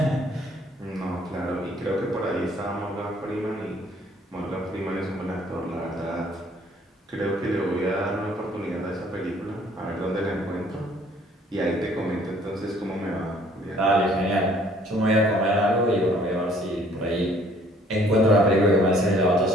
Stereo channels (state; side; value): normal; both; correlation 0.59